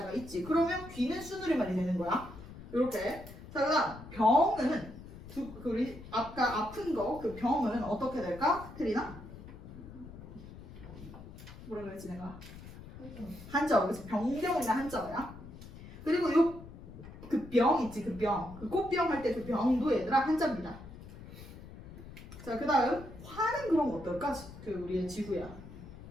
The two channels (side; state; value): left; noise; rumble, 15 dB below the sound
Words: 있지. 그러면 귀는 수누리말이 되는 거야. 이렇게. 자, 그다음 병은 우리 아까 아픈 거 그 병은 어떻게 될까? 테리나? 뭐라 그랬지 내가? 한자어. 그래서 병병이나 한자어야. 그리고 요 그 병 있지 그 병. 그 꽃병 할 때 그 병도 얘들아 한자입니다. 자, 그다음 화는 그럼 어떨까? 그 우리의 지구야.